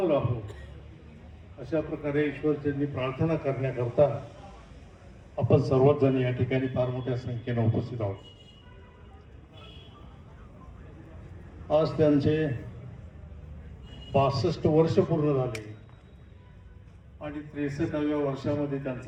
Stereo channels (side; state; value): both; identical; correlation 1.00